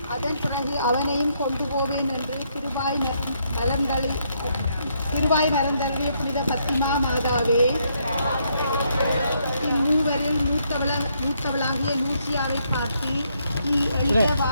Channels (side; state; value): both; inverted; correlation -0.74